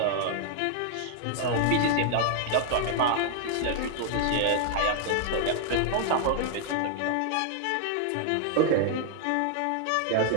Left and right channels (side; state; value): both; different; correlation -0.01